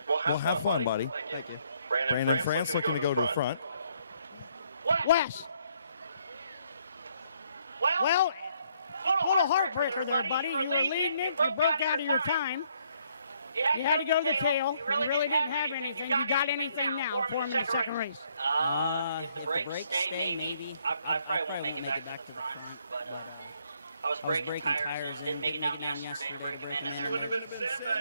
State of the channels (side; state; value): both; inverted; correlation -0.69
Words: Well, have fun, buddy. Thank you. Brandon France looking to go to the front. Wes. Well, little heartbreaker there, buddy. You were leading it. You broke out of your time. You had to go to the tail. You really didn't have anything. You got anything now for him in the second race? If the brakes stay, maybe. I probably won't make it back to the front. But I was breaking tires in, didn't make it down yesterday to break them in.